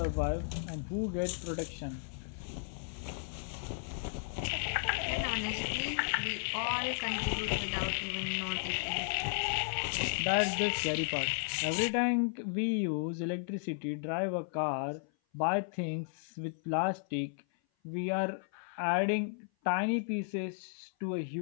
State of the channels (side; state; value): right; silent; 55 dB below the other